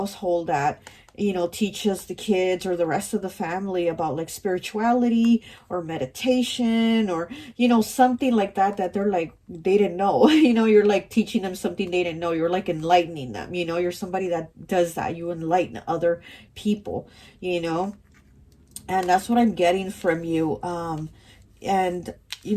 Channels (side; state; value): both; identical; correlation 1.00